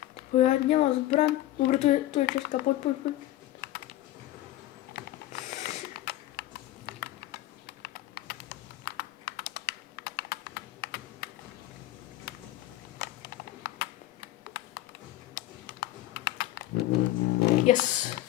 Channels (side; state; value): right; quieter; 15.0 dB